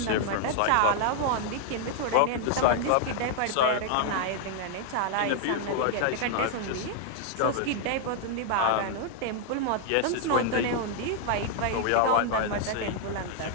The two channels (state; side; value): different; both; correlation 0.00